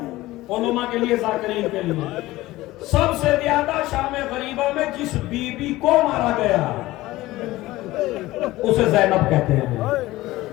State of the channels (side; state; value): right; quieter; 17.8 dB